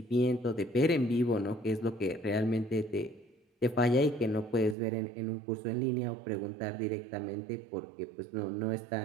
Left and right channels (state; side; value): drops out; left; at 4.8 s